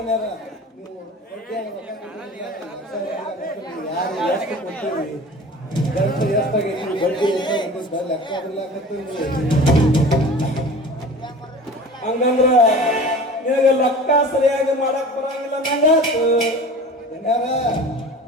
ಹಂಗಂದ್ರ ನಿನಗೆ ಲೆಕ್ಕ ಸರಿಯಾಗಿ ಮಾಡಕ್ ಬರಂಗಿಲ್ಲ ನಂಗಾತು.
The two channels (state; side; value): normal; both; correlation 0.39